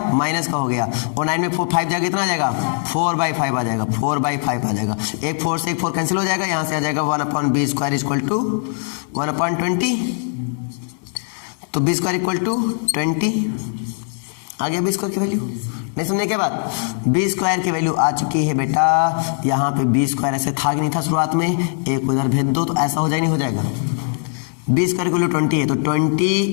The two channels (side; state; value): right; silent; digital silence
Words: माइनस का हो गया, और 9 में 5 जाएगा, कितना आ जाएगा? 4/5 आ जाएगा, 4/5 आ जाएगा। एक 4 से एक 4 कैंसिल हो जाएगा, यहाँ से आ जाएगा 1/b स्क्वायर इक्वल टू 1/20। तो b स्क्वायर इक्वल टू 20 आ गया। b स्क्वायर की वैल्यू नहीं समझे क्या बात? b स्क्वायर की वैल्यू आ चुकी है बेटा। यहाँ पे b स्क्वायर ऐसे था कि नहीं था शुरुआत में? एक को इधर भेज दो तो ऐसा हो जाए, नहीं हो जाएगा? b स्क्वायर की वैल्यू 20 है, तो